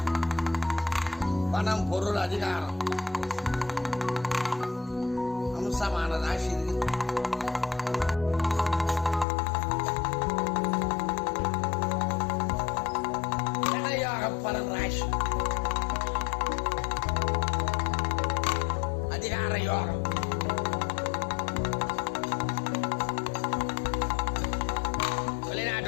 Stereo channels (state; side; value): drops out; right; at 9.2 s